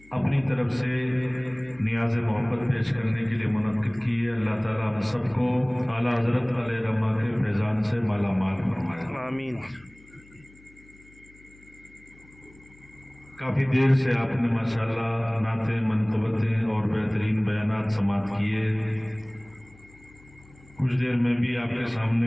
اپنی طرف سے نیاز محبت پیش کرنے کے لیے منعقد کی ہے اللہ تعالیٰ ہم سب کو اعلیٰ حضرت علیہ رحمہ کے فیضان سے مالا مال فرمائے آمین کافی دیر سے آپ نے ماشاءاللہ نعتیں منقبتیں اور بہترین بیانات سماعت کیے کچھ دیر میں بھی آپ کے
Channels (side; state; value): left; noise; hum, 26 dB below the sound